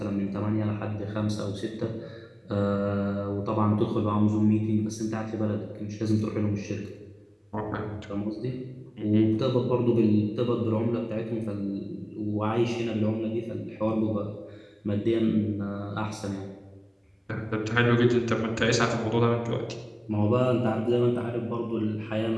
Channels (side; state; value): both; identical; correlation 1.00